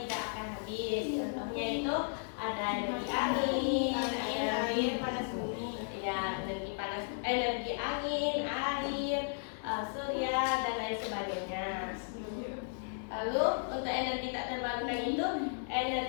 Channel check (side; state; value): right; silent; digital silence